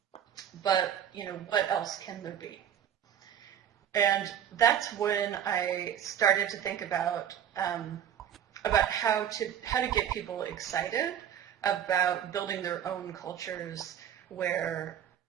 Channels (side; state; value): left; quieter; 9.4 dB